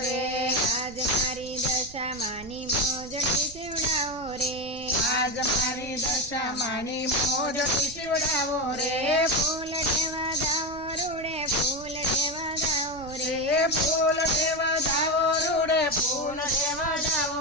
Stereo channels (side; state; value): right; noise; rumble, 18 dB below the sound